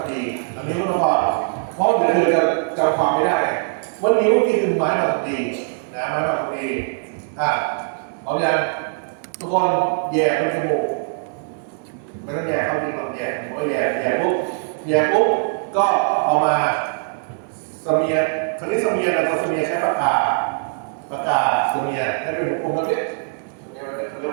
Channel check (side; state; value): left; silent; digital silence